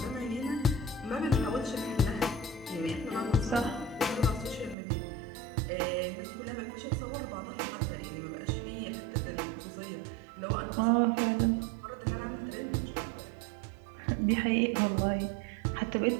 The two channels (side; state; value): left; drops out; at 4.8 s